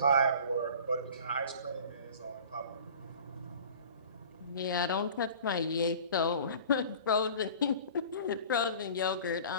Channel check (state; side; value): inverted; both; correlation -0.43